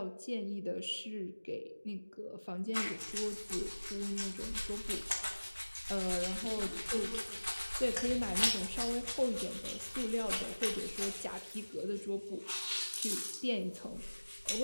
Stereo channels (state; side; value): inverted; both; correlation -1.00